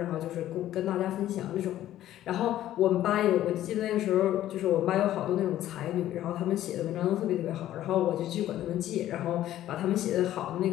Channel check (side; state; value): right; quieter; 13.1 dB